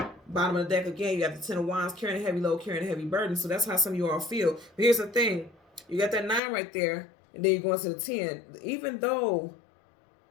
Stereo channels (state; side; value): drops out; right; at 6.4 s